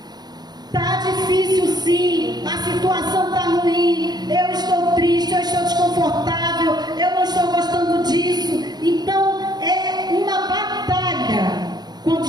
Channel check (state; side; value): late; left; 0.20 ms